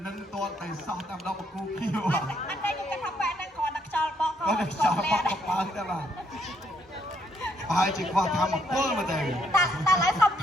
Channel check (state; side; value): normal; both; correlation 0.72